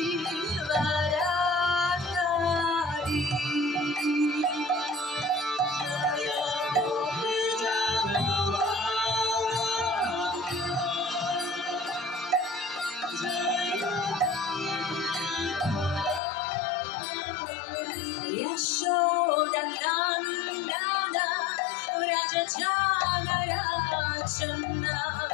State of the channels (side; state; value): right; drops out; at 16.2 s